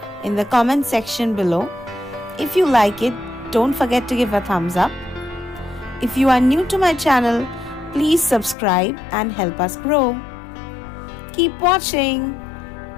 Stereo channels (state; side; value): drops out; right; at 8.6 s